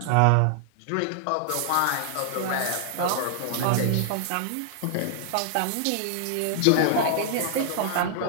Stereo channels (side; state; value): both; different; correlation -0.01